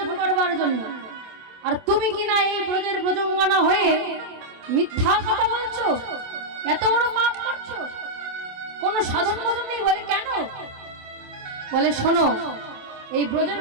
করবার জন্য, আর তুমি কিনা এই ব্রজের ব্রজঙ্গনা হয়ে মিথ্যা কথা বলছো, এত বড় পাপ করছো, কোন সাধন ভজন নেই। বলে কেন? বলে শোনো, এই ব্রজের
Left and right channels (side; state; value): left; late; 27 ms